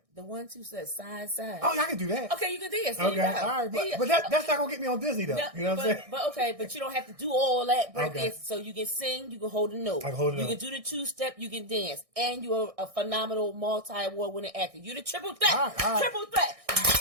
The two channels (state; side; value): late; left; 1.6 ms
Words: The 1-2 side. Oh, yeah, I can do that. Okay, you can dance. Okay, all right. But that's not going to get me on Disney, though. You know what I'm saying? But you don't have to do all that breakdancing. So you can sing, you can hold a note. I can hold a note. You can do the two-step, you can dance. And you're a phenomenal multi-award winning actor. You're the triple threat. All right. Triple threat.